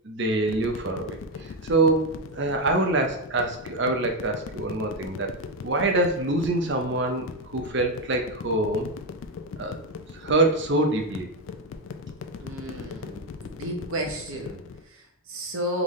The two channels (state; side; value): normal; both; correlation 0.08